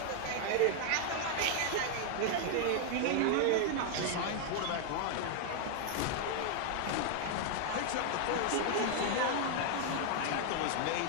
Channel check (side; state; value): both; different; correlation 0.00